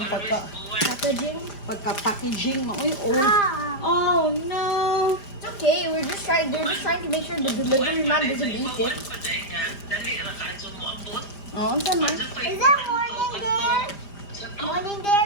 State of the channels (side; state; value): right; late; 5.0 ms